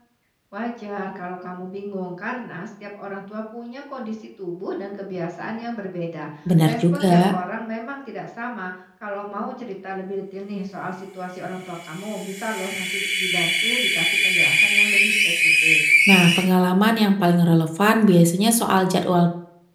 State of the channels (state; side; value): identical; both; correlation 1.00